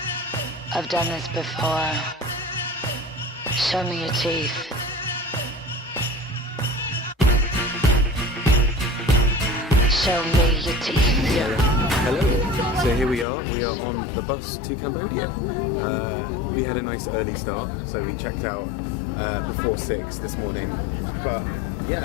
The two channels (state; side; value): drops out; right; at 13.2 s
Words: I've done this before. Show me your teeth. Show me your teeth. Hello. So here we are. We are on the bus to Cambodia. We had a nice early start, so we checked out before 6 this morning. But